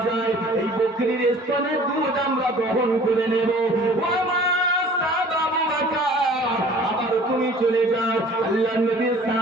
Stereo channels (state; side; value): normal; both; correlation 0.49